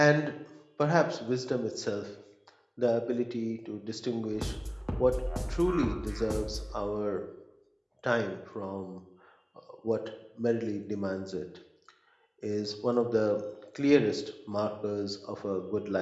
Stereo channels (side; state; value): both; identical; correlation 1.00